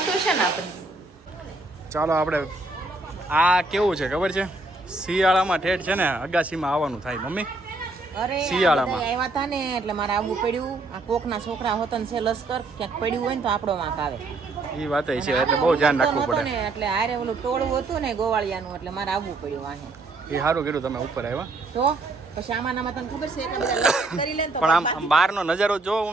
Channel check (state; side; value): quieter; left; 3.2 dB